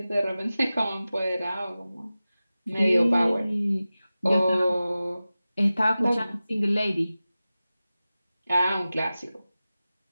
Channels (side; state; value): both; inverted; correlation -0.96